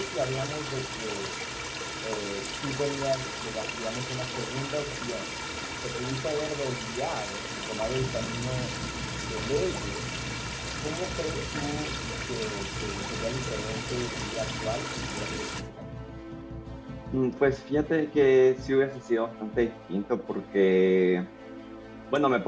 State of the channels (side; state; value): both; identical; correlation 1.00